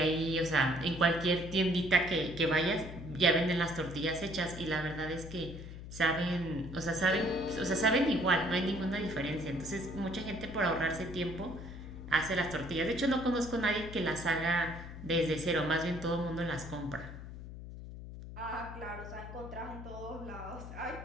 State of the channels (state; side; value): noise; left; hum, 11 dB below the sound